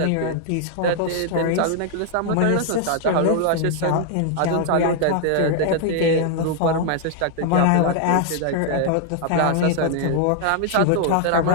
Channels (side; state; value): both; different; correlation 0.00